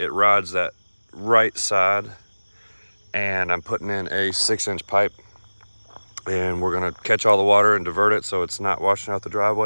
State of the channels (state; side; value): inverted; both; correlation -1.00